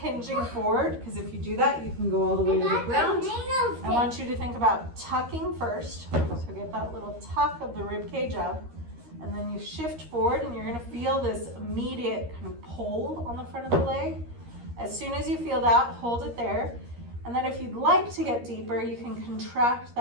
forward, because if you do that, you can go all the way to the ground. I want you to think about tucking first. So get that little tuck of the rib cage up. And then you shift forward and you're gonna feel this immediate kind of pull on the front of the leg. As soon as you feel that, hold it there. And then if you'd like to get deeper, you can contract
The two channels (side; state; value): left; late; 13 ms